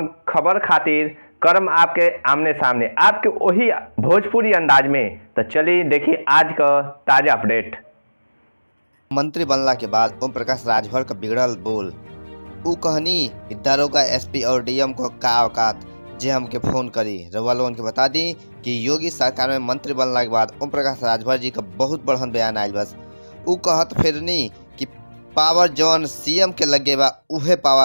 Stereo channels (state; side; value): inverted; both; correlation -1.00